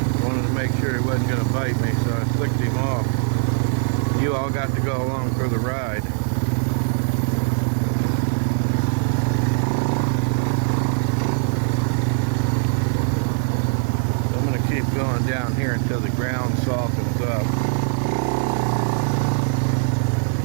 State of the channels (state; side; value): silent; left; digital silence